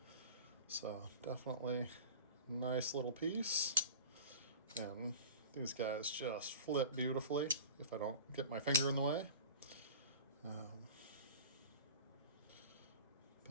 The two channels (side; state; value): both; inverted; correlation -0.39